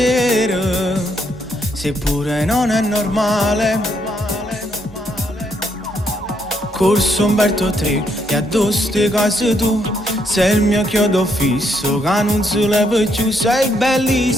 Seppure non è normale. Corso Umberto 3 e addosso te cose tu. Sei il mio chiodo fisso che non si leva più. Sei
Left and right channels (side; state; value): both; normal; correlation 0.74